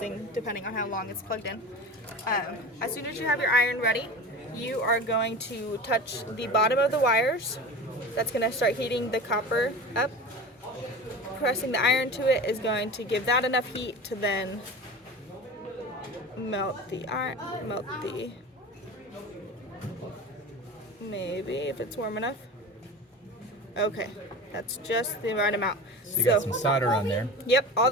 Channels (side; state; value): both; normal; correlation 0.33